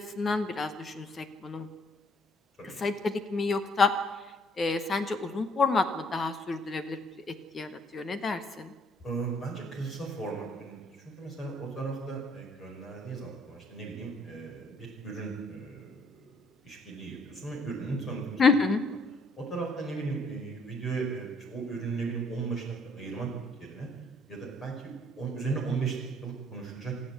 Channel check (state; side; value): normal; both; correlation 0.64